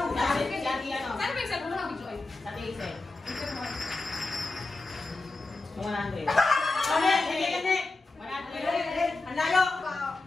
Si Ate ano? Saan ba yung cellphone mo, Joy? Sa Ate Isel. 100. Kami! Hindi! Hindi! 100. Ang layo!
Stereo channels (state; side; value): quieter; right; 3.3 dB